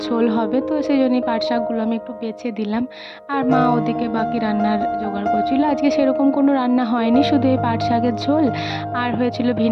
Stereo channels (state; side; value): identical; both; correlation 1.00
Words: ঝোল হবে, তো সেই জন্যই পাট শাকগুলো আমি একটু বেছে দিলাম। আর মা মা ওদিকে বাকি রান্নার জোগাড় করছিল। আজকে সেরকম কোনো রান্না হয়নি, শুধু এই পাট শাকের ঝোল আর হয়েছিল